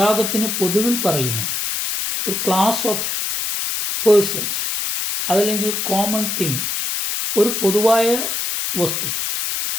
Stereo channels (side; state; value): left; noise; hiss, 2 dB below the sound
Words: പൊതുവിൽ പറയുന്ന ഒരു ക്ലാസ് ഓഫ് പേഴ്സൺസ്, അതല്ലെങ്കിൽ കോമൺ തിങ്, ഒരു പൊതുവായ വസ്തു,